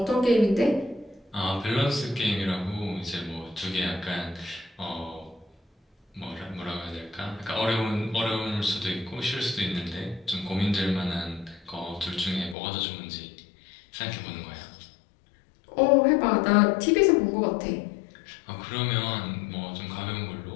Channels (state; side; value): drops out; right; at 12.6 s